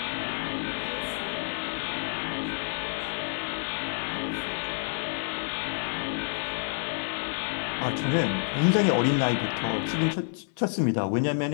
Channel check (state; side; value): silent; right; 56 dB below the other